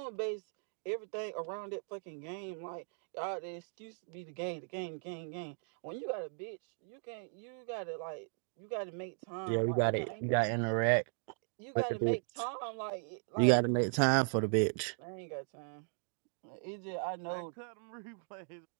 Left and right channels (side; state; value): left; silent; 53 dB below the other